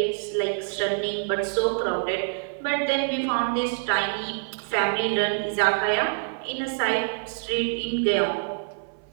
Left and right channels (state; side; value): silent; left; 61 dB below the other